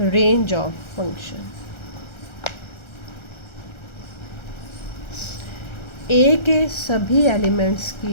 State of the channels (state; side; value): late; right; 1.3 ms